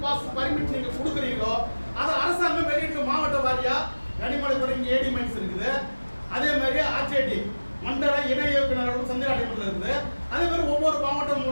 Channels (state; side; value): inverted; both; correlation -1.00